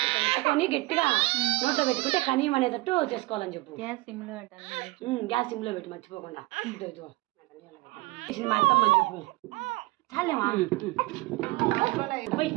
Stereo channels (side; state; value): left; quieter; 21.2 dB